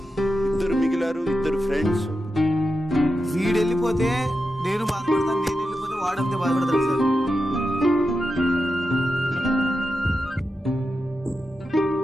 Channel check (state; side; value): normal; both; correlation 0.89